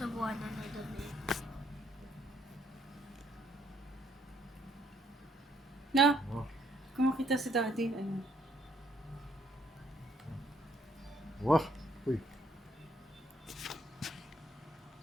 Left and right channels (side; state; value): both; normal; correlation 0.69